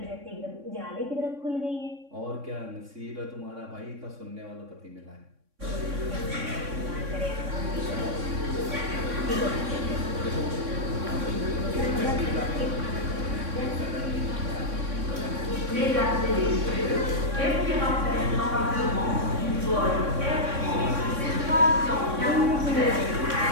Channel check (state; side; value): late; left; 3.6 ms